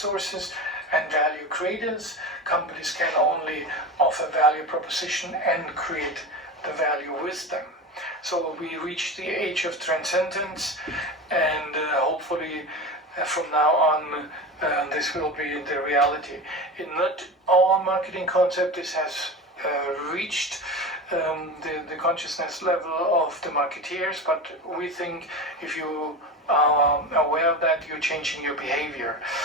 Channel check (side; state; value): both; normal; correlation 0.27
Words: and value creators. Companies can only offer value proposition and create the value with them. So we reached the age of transcendence, and hopefully from now on this will be the reality. In not all marketing concept this has reached the consciousness level of the marketeers, but we think if you are aware of that, you're changing your behavior